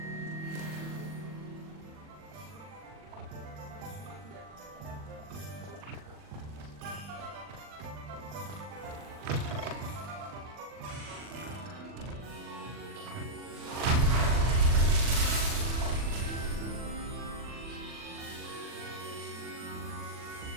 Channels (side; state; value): left; late; 40 ms